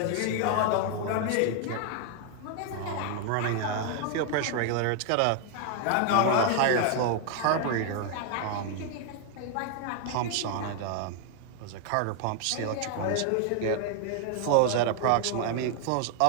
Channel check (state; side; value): different; both; correlation 0.00